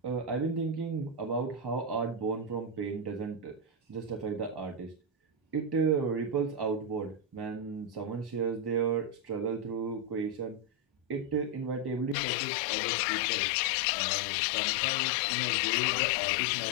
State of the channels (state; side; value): drops out; right; at 12.2 s